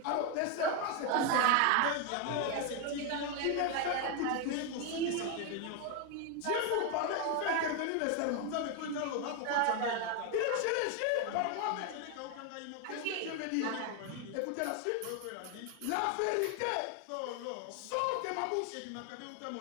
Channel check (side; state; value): both; different; correlation 0.01